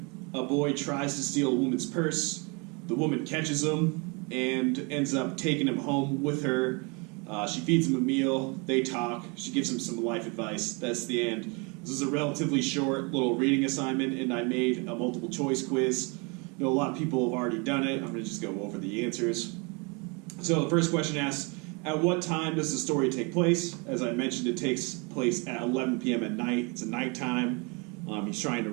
A boy tries to steal a woman's purse. The woman catches him and ends up taking him home with her. She feeds him a meal. They talk. She gives him some life advice. That's the end. This is a relatively short little reading assignment, and I made a multiple choice quiz. I know a lot of people have already done it. I'm going to just go over the answers. So the first question asks, at what time does the story take place? As I mentioned, it takes place at 11 p.m. at night. It's a nighttime. He's trying to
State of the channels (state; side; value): quieter; left; 31.1 dB